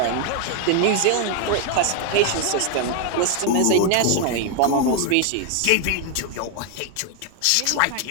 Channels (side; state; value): both; different; correlation 0.00